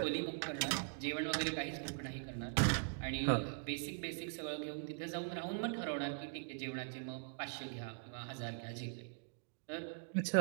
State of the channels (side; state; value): left; silent; digital silence